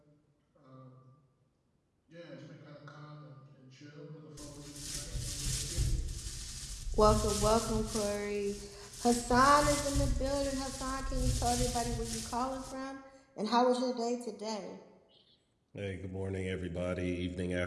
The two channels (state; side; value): identical; both; correlation 1.00